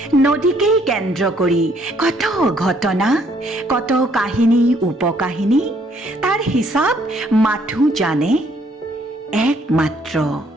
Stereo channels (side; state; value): both; normal; correlation 0.66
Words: নদীকেই কেন্দ্ৰ কৰি কত ঘটনা, কত কাহিনী উপকাহিনী। তাৰ হিচাপ মাথো জানে একমাত্ৰ